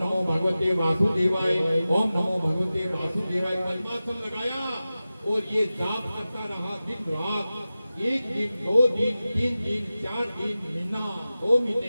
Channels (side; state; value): both; inverted; correlation -0.95